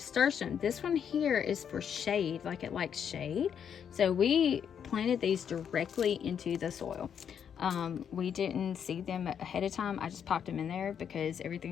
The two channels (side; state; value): right; quieter; 8.1 dB